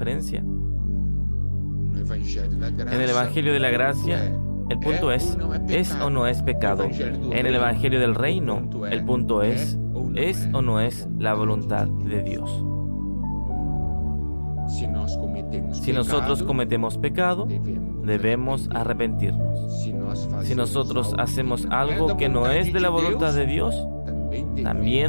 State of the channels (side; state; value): both; inverted; correlation -1.00